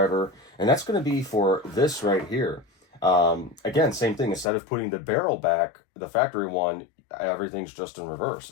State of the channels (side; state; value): right; drops out; at 4.5 s